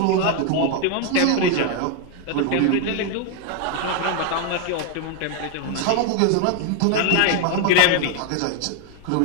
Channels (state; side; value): different; both; correlation 0.01